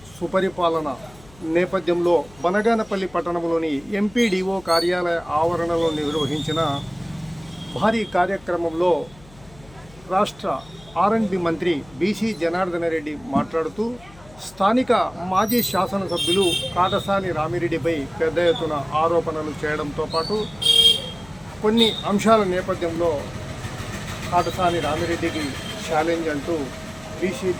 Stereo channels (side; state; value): left; noise; hum, 23 dB below the sound